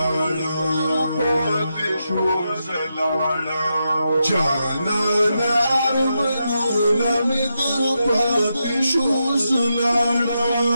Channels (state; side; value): inverted; both; correlation -0.85